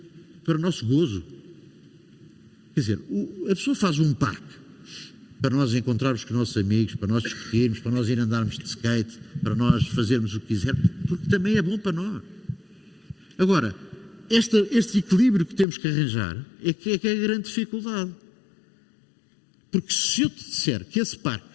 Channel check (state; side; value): drops out; right; at 15.7 s